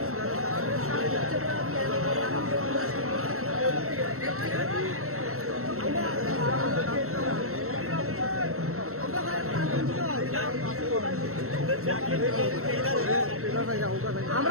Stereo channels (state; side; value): late; left; 0.63 ms